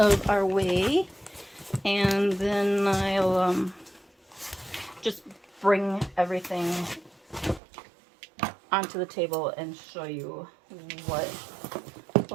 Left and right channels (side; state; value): left; drops out; at 7.6 s